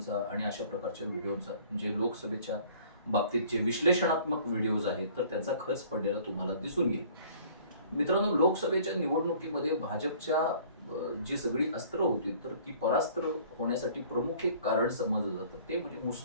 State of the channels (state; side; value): inverted; both; correlation -0.52